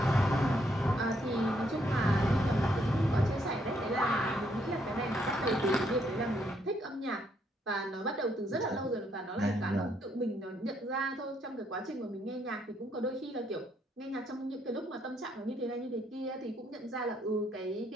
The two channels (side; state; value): both; normal; correlation 0.72